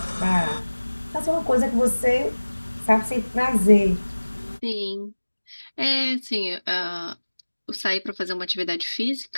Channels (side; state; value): both; inverted; correlation -1.00